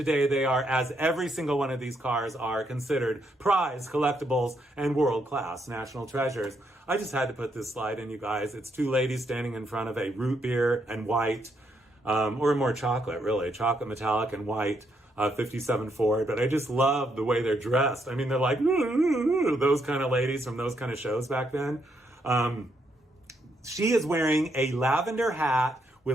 they are, as every single one of these cars are, considered prize collectibles and world-class national treasures. I just had to put this slide in, you guys. It's two ladies standing in front of a root beer and white, or more chocolate, really, chocolate metallic and white 57 Ford. But I just love the way they're dressed. I mean, they're like those kind of ladies from those kind of shows back then. She is wearing a lavender hat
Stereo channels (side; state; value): both; normal; correlation 0.76